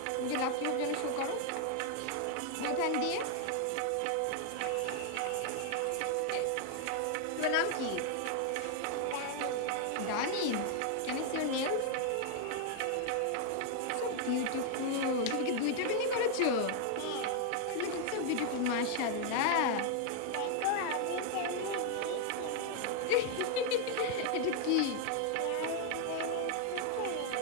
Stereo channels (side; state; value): both; different; correlation 0.00